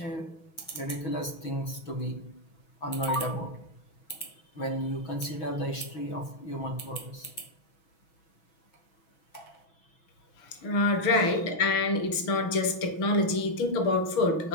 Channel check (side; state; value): right; late; 6.2 ms